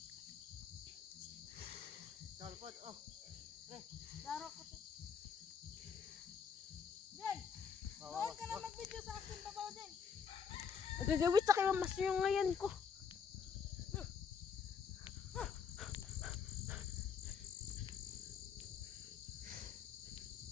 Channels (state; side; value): quieter; right; 6.7 dB